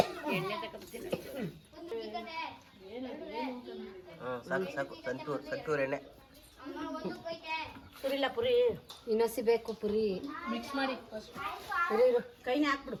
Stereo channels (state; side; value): identical; both; correlation 1.00